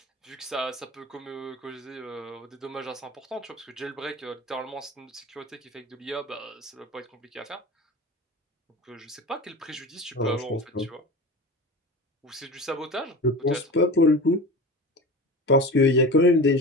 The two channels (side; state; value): both; normal; correlation 0.31